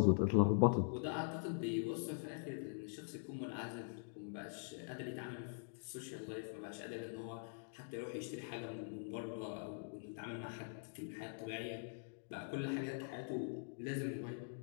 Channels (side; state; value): right; silent; digital silence